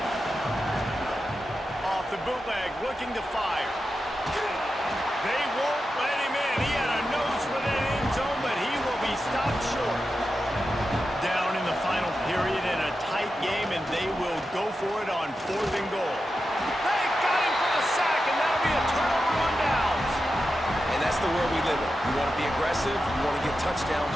Off the bootleg, looking to fire. They won't let him in. He had a nose for that end zone, but he will be stopped short. Down in the final period in a tight game, and they will go for it on 4th and goal. They got him for the sack, and that'll be a turnover on downs. And that's the world we live in. You want to be aggressive, you want to get touchdowns,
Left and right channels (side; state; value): both; normal; correlation 0.90